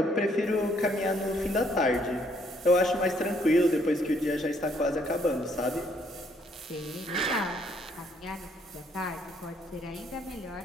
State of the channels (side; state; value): both; normal; correlation 0.68